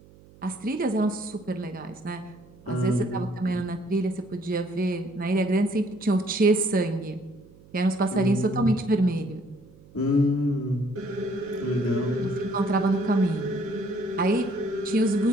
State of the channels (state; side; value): noise; right; hum, 24 dB below the sound